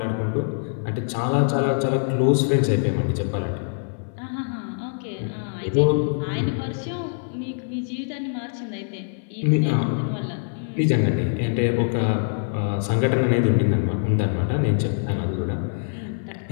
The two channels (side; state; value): right; silent; 63 dB below the other